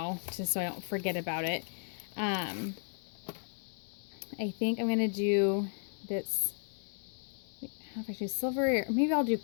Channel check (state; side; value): silent; right; 55 dB below the other